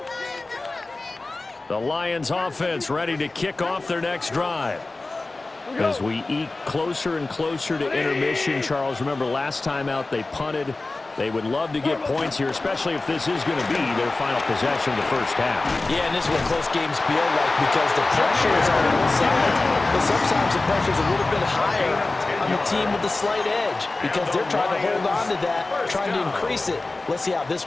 The Lions offense ready to kick off their next drive. As we eke closer and closer to intermission, Charles, remember last time out they punted. They would love to get points here, especially if this is going to be their final possession of the first half. Yeah, and this is what close games feel like because the pressure is on both sides. But sometimes the pressure is a little bit higher on the team with the slight edge because they're trying to hold on to that, trying to increase it. Let's see how this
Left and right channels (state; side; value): quieter; right; 3.2 dB